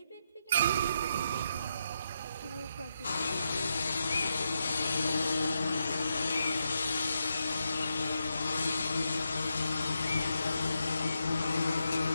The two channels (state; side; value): inverted; both; correlation -0.83